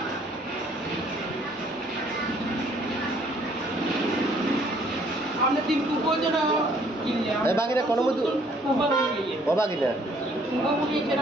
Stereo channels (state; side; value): normal; both; correlation 0.61